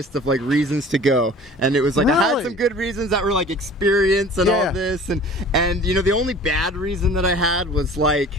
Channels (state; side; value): normal; both; correlation 0.45